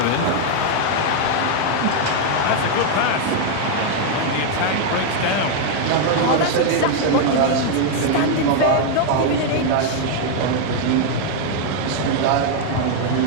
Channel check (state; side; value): different; both; correlation 0.00